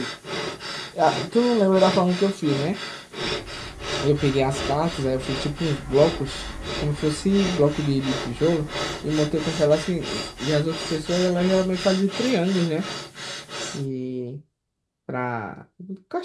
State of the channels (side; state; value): both; identical; correlation 1.00